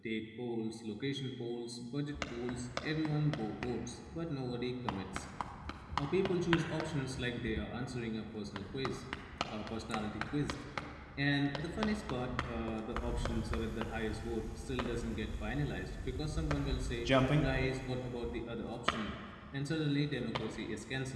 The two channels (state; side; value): identical; both; correlation 1.00